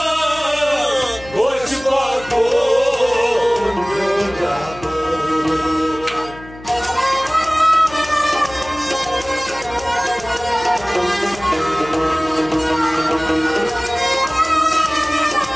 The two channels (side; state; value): left; noise; hum, 18 dB below the sound